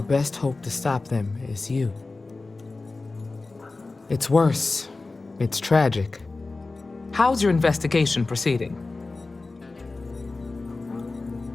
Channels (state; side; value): quieter; right; 3.5 dB